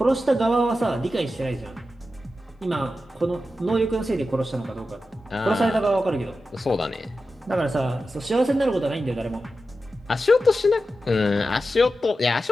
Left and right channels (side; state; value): both; normal; correlation 0.91